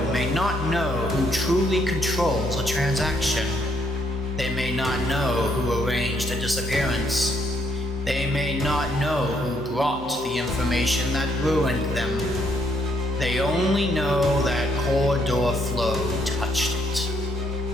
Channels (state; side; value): normal; both; correlation 0.71